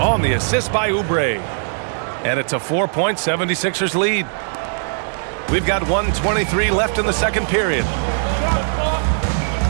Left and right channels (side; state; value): left; silent; digital silence